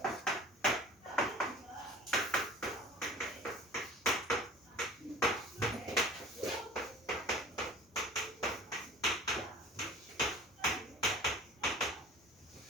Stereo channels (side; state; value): both; normal; correlation 0.43